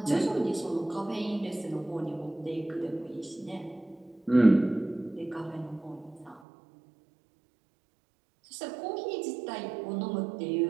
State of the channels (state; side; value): drops out; left; at 6.4 s